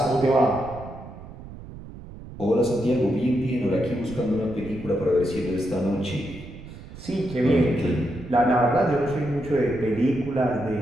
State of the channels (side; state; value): right; noise; rumble, 14 dB below the sound